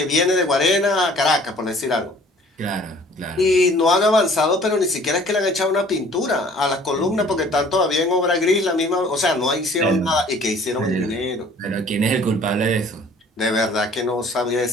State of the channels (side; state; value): both; normal; correlation 0.53